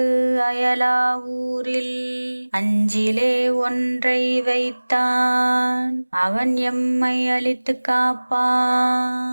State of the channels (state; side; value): inverted; both; correlation -1.00